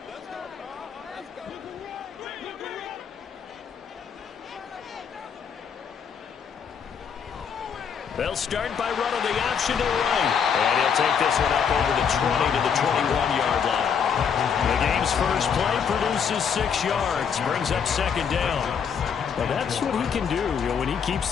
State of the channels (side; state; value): right; quieter; 7.1 dB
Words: They'll start by running the option to the right. And he'll take this one up over the 20 to the 21-yard line. The game's first play produces 6 yards, brings up second down. Well, that's what he can do, when he keeps